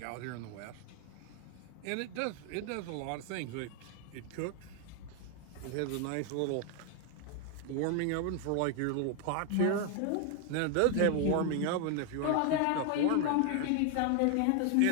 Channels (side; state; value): both; different; correlation 0.00